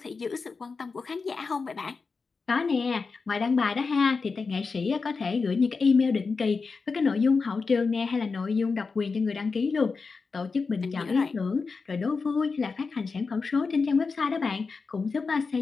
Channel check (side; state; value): right; quieter; 4.6 dB